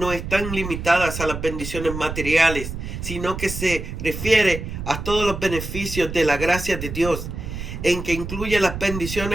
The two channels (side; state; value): right; noise; rumble, 7 dB below the sound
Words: están limitadas a las bendiciones materiales, sino que se refiere a todos los beneficios de la gracia de Dios, en que incluye las